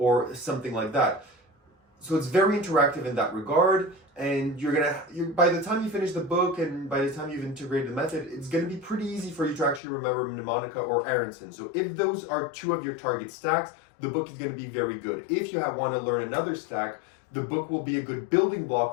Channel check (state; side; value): drops out; right; at 9.8 s